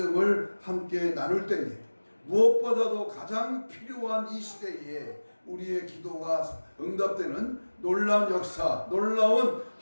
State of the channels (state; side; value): inverted; both; correlation -1.00